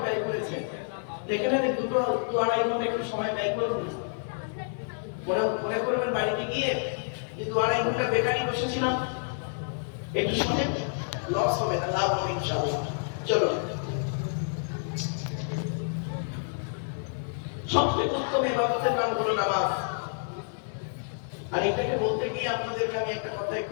ব্যয় করেছেন, দেখে না 2-2.5 ঘন্টা একটু সময় ব্যয় করুন। মনে করবেন বাড়িতে গিয়ে যে 2-2.5 ঘন্টা বেকারই বসেছিলাম, একটু শুনে লস হবে না, লাভ হবে ইনশাআল্লাহ। চলো, সবচেয়ে উত্তম ইবাদতের নাম হলো নামাজ। আর এটাকে বলতে গিয়ে আপনাদেরকে আমি একটা কথা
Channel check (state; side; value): silent; right; digital silence